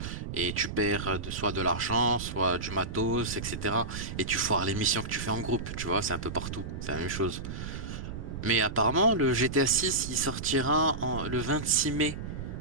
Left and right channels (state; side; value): noise; right; rumble, 7 dB below the sound